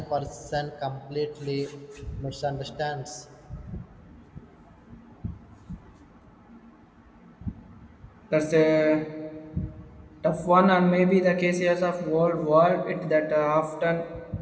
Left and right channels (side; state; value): both; identical; correlation 1.00